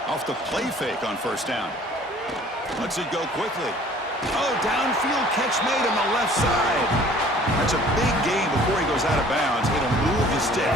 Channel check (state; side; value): normal; both; correlation 0.52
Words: Off the play fake on first down. Lets it go quickly. Oh, downfield catch made on the left side. That's a big gain before he goes out of bounds. It'll move the